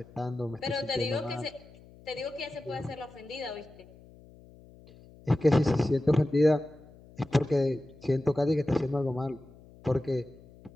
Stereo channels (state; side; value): noise; left; hum, 23 dB below the sound